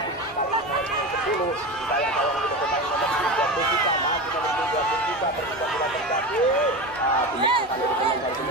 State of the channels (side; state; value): both; normal; correlation 0.25